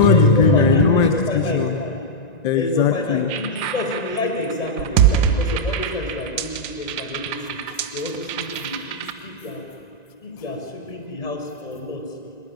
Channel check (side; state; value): right; late; 1.9 ms